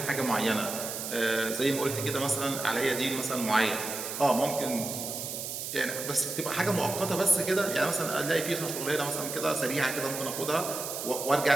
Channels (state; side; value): noise; right; hiss, 6 dB below the sound